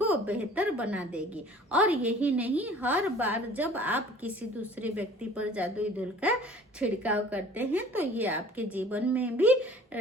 बेहतर बना देगी। और यही नहीं, हर बार जब आप किसी दूसरे व्यक्ति पर जादुई धूल का छिड़काव करते हैं तो ये आपके जीवन में भी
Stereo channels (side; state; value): both; normal; correlation 0.49